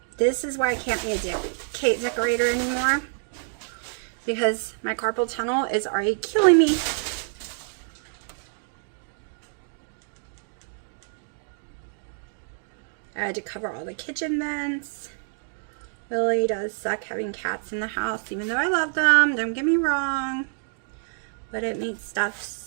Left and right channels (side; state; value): left; silent; digital silence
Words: This is why I can't be a cake decorator anymore, because my carpal tunnel is already killing me. I had to cover all the kitchen vents. Really does suck having cats in the house, even though I love them, don't get me wrong, but it makes stuff